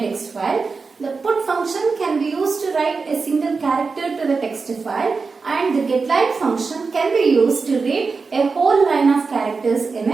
file. The put function can be used to write a single character to the text file, and the getLine function can be used to read a whole line of characters in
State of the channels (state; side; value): quieter; left; 4.6 dB